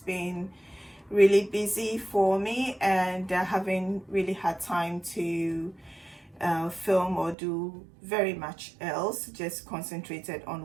really busy for me and I haven't really had time to film or do very much else. Just concentrated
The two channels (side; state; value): left; drops out; at 7.4 s